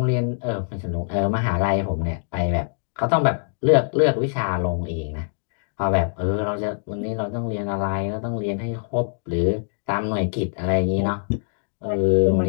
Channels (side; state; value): right; silent; digital silence